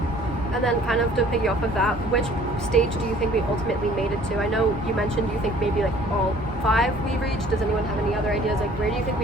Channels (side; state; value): both; normal; correlation 0.53